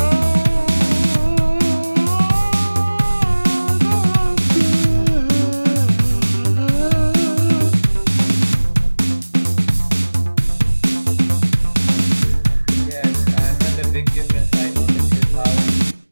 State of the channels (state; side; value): inverted; both; correlation -1.00